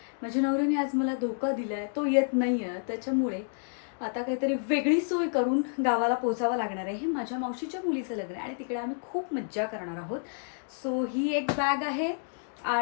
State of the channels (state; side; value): silent; right; digital silence